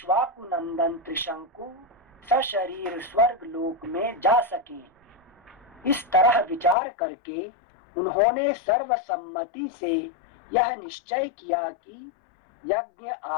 नंदन त्रिशंकु सशरीर स्वर्ग लोक में जा सके। इस तरह विचार करके उन्होंने सर्वसम्मति से यह निश्चय किया कि यज्ञ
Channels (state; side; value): drops out; right; at 6.8 s